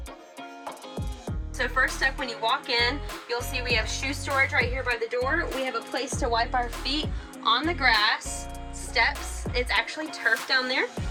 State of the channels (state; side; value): identical; both; correlation 1.00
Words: So first up, when you walk in, you'll see we have shoe storage right here by the door. We have a place to wipe our feet on the grass, steps. It's actually turf down there.